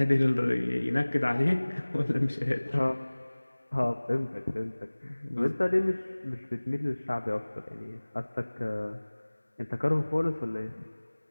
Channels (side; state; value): both; inverted; correlation -1.00